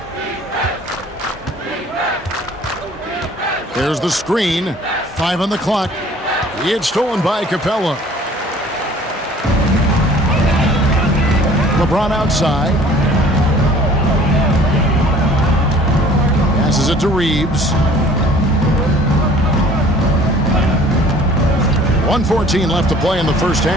There's the screen. 5 on the clock. It's stolen by Capella. LeBron outside. Passes it to Reeves. 1:14 left to play in the first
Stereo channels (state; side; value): normal; both; correlation 0.52